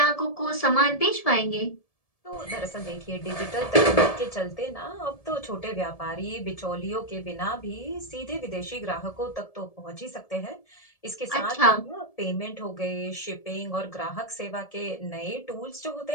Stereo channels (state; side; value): late; right; 1.7 ms